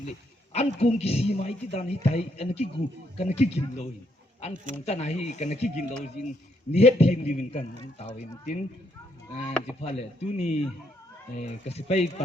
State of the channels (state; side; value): normal; both; correlation 0.74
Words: le an kum ki si mai ti dan hi tai an ki gu kan ki gin lo hi an kum ta na hi kan ki gin lo jin ni het thim di min kan taw in tin ji phale tu ni ka si pai